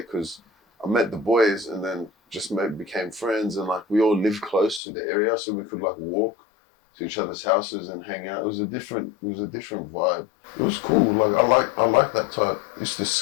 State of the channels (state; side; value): drops out; right; at 4.8 s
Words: because I met the boys and then just became friends, and like we all lived close to the area, so we could like walk to each other's houses and hang out. It was a different vibe. It was cool. Like I like that type. Used to